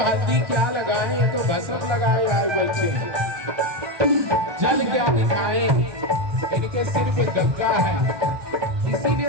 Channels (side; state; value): left; late; 1.2 ms